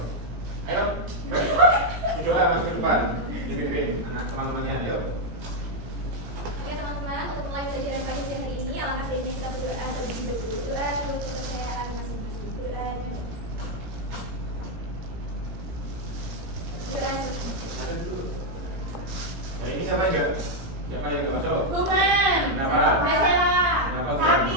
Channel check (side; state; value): left; late; 17 ms